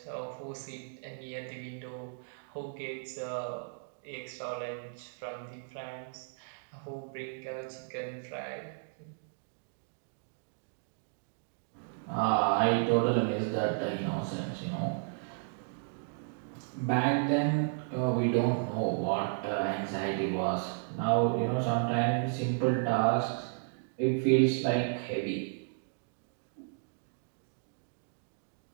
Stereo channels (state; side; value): silent; left; digital silence